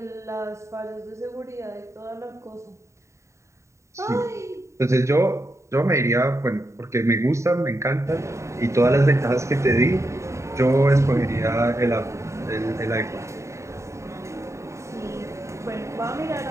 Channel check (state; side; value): late; left; 0.14 ms